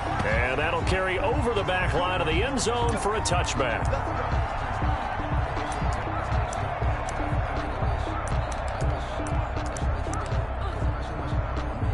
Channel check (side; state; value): both; identical; correlation 1.00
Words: And that'll carry over the back line of the end zone for a touchback.